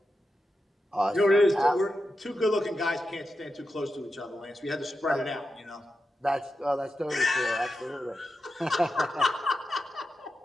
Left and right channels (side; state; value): both; normal; correlation 0.89